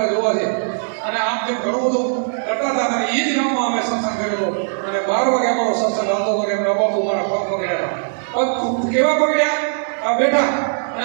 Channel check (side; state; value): left; silent; digital silence